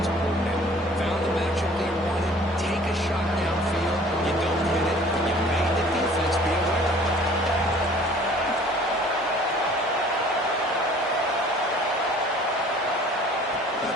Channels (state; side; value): normal; both; correlation 0.51